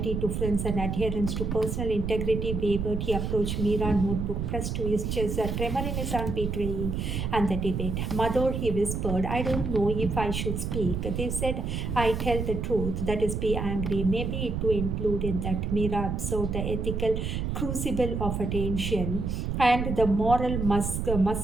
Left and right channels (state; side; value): noise; right; rumble, 2 dB below the sound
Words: to friends and adherence to personal integrity wavered. He approached Mira, notebook pressed to his chest, a tremor in his arm betraying and the debate. Mother, he whispered, I don't know if I should speak. They said I tell the truth, that is be angry. Maybe it to include in that. Mira observed the ethical crucible of attention and the moral